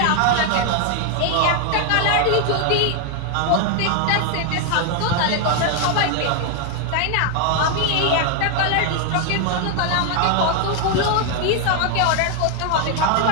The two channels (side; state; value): both; different; correlation 0.01